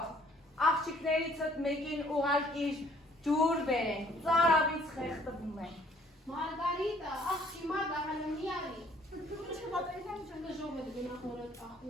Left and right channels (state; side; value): normal; both; correlation 0.60